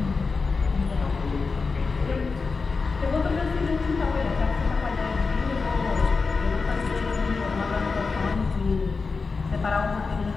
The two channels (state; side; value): quieter; right; 4.5 dB